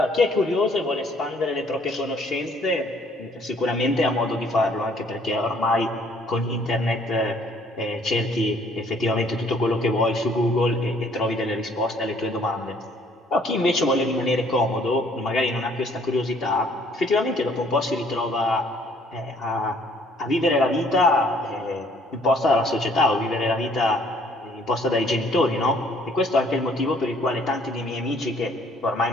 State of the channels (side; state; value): both; normal; correlation 0.61